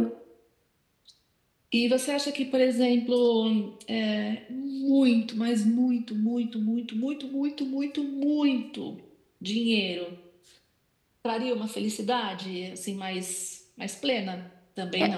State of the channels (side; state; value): both; identical; correlation 1.00